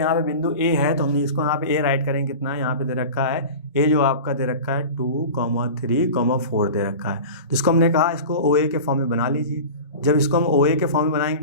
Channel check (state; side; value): inverted; both; correlation -0.33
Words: पे बिंदु ए है तो हमने इसको यहाँ पे ए राइट करेंगे, कितना यहाँ पे दे रखा है ए, जो आपका दे रखा है 2, 3, 4 दे रखा है। तो इसको हमने कहा इसको OA के फॉर्म में बना लीजिए। जब इसको हम OA के फॉर्म में बनाएंगे